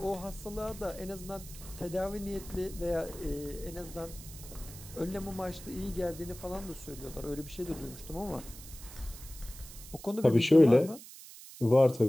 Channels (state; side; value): noise; right; hiss, 16 dB below the sound